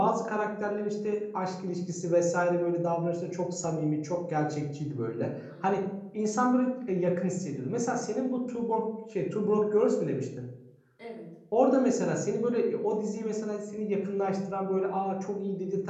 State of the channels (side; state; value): both; identical; correlation 1.00